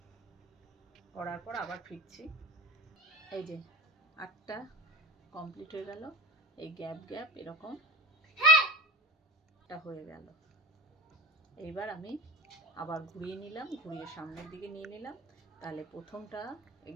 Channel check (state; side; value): normal; both; correlation 0.32